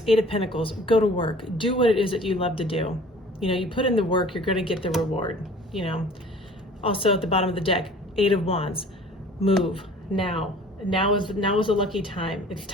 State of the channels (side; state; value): both; normal; correlation 0.48